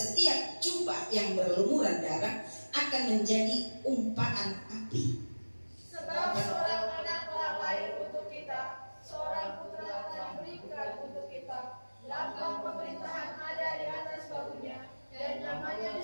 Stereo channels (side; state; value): both; inverted; correlation -1.00